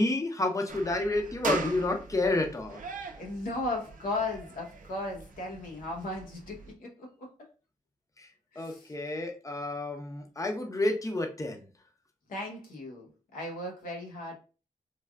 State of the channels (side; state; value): both; normal; correlation 0.65